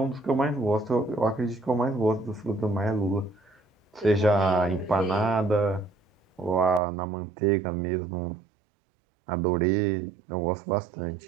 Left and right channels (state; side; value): drops out; left; at 6.8 s